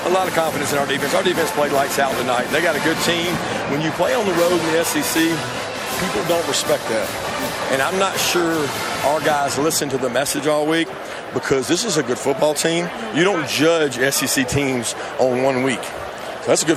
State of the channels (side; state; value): both; identical; correlation 1.00